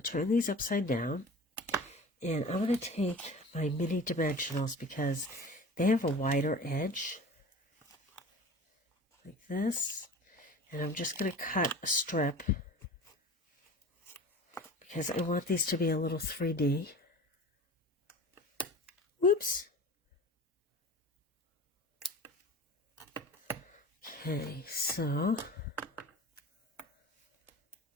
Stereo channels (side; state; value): both; normal; correlation 0.38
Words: to turn these upside down, and I'm going to take my mini dimensionals because they have a wider edge, like this, and I'm just going to cut a strip because I want these to be a little 3D. Whoops. Okay, so